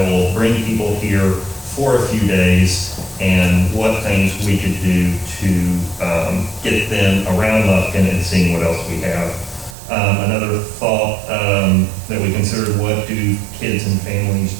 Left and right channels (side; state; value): left; drops out; at 9.8 s